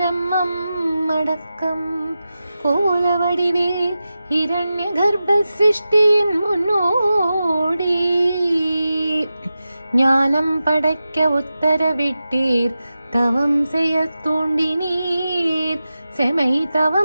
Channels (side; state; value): both; inverted; correlation -0.92